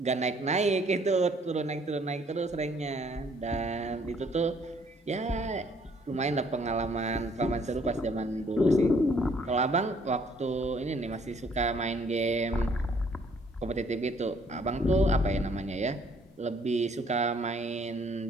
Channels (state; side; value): normal; both; correlation 0.63